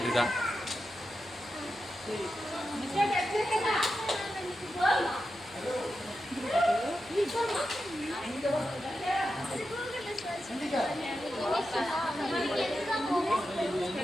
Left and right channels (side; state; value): left; noise; hum, 24 dB below the sound